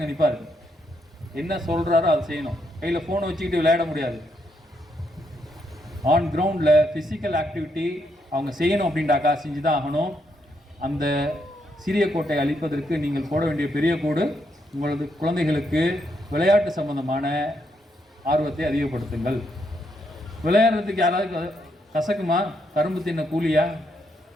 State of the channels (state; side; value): normal; both; correlation 0.77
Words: நிற்பார், என்ன சொல்கிறாரோ அதை செய்யணும். கையில் ஃபோனை வச்சுக்கிட்டு விளையாட முடியாது. ஆன் கிரவுண்டில் ஃபிசிக்கல் ஆக்டிவிட்டி அவங்க செய்யணும் அப்படின்டாக்கா செஞ்சு தான் ஆகணும். அந்த சிறிய கோட்டை அழிப்பதற்கு நீங்கள் போட வேண்டிய பெரிய கோடு உங்களது குழந்தைகளுக்கு விளையாட்டு சம்பந்தமான ஆர்வத்தை அதிகப்படுத்துங்கள். விளையாடுறதுக்கு யாராவது கசக்குமா? கரும்பு தின்ன கூலியா?